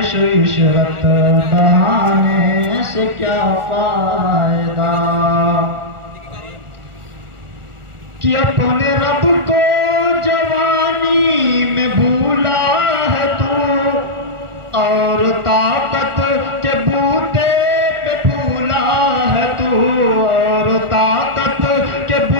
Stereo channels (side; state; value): left; late; 1.4 ms